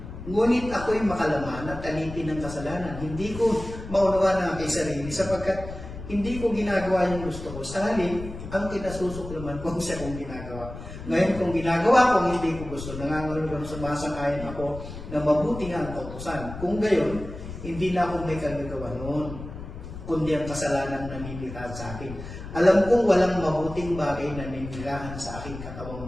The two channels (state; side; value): noise; left; rumble, 11 dB below the sound